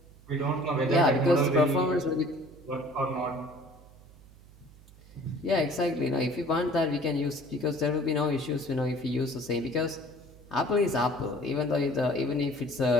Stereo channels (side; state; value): right; noise; hum, 23 dB below the sound